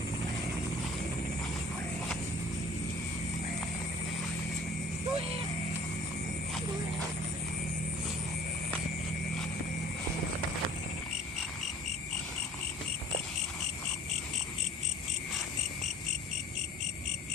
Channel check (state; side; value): normal; both; correlation 0.48